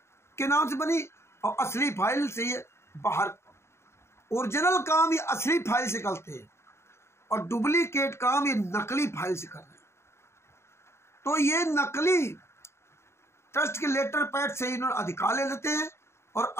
के नाम से बनी और असली फाइल से ये बाहर, ओरिजिनल काम ये असली फाइल से करते हैं और डुप्लीकेट काम ये नकली फाइल से कर रहे हैं। तो ये नकली ट्रस्ट के लेटर पैड से इन्होंने अधिकार ले लेते हैं और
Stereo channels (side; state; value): right; late; 0.13 ms